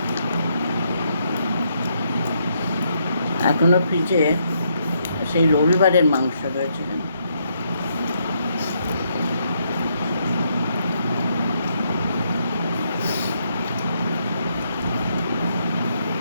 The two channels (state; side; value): inverted; both; correlation -0.75